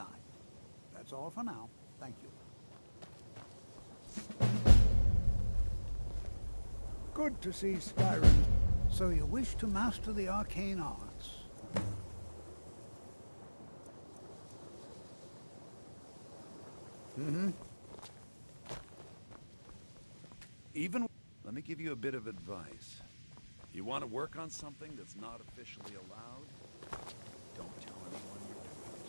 That's all for now. Thank you. Good to see Skyrim. So you wish to master the arcane arts? Even... Let me give you a bit of advice. You want to work on something that's not officially allowed? Don't tell anyone you're doing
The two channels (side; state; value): both; inverted; correlation -1.00